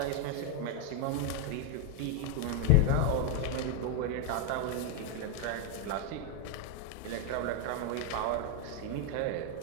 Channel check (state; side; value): different; both; correlation 0.01